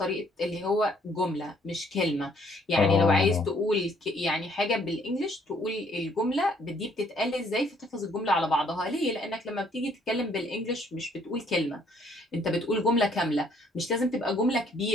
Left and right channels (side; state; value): both; normal; correlation 0.65